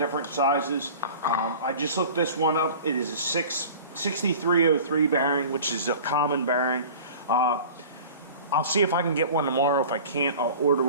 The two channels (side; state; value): both; inverted; correlation -0.41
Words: sizes. I just looked this one up. It is a 6303 bearing, which is a common bearing. I'll see if I can get one tomorrow. If I can't, I'll order